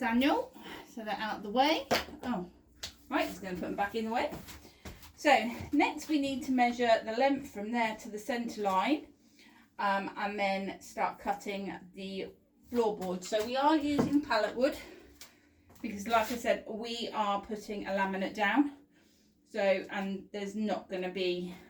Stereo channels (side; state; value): both; identical; correlation 1.00